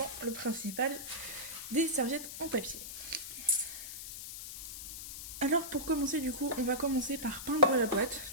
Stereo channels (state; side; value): noise; left; hiss, 9 dB below the sound